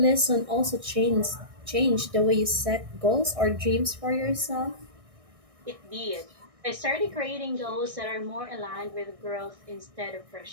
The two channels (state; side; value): late; left; 1.6 ms